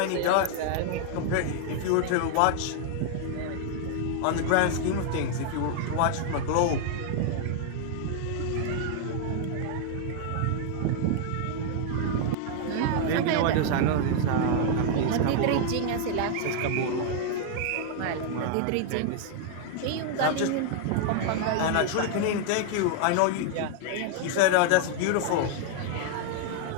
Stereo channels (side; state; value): both; different; correlation 0.00